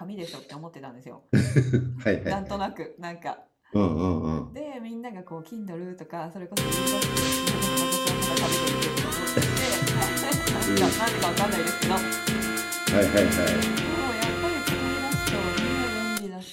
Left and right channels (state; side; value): identical; both; correlation 1.00